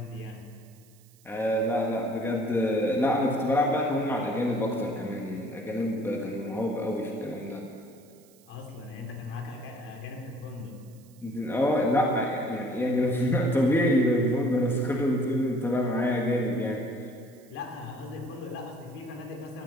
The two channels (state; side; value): noise; right; hiss, 28 dB below the sound